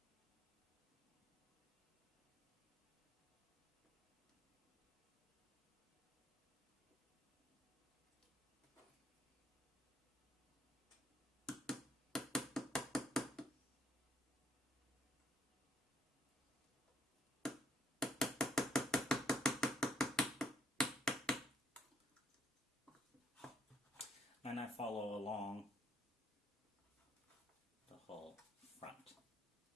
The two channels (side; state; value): both; normal; correlation 0.68